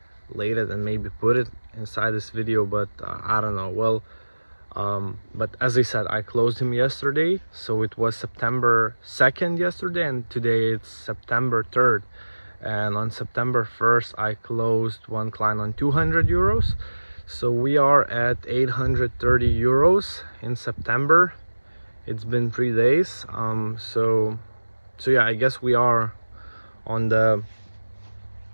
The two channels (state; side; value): inverted; both; correlation -1.00